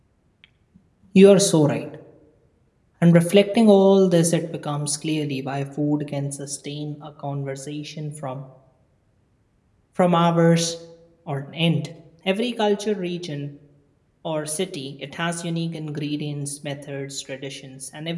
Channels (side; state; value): both; identical; correlation 1.00